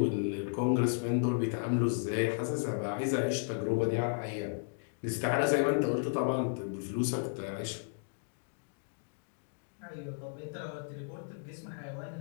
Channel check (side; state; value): right; silent; digital silence